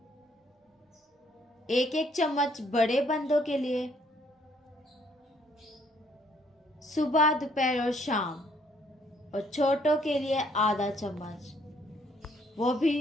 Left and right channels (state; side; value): normal; both; correlation 0.66